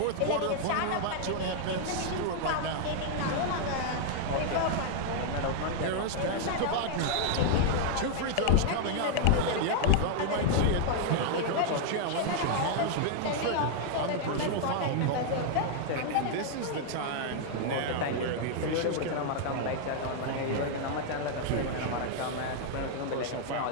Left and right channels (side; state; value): both; different; correlation 0.00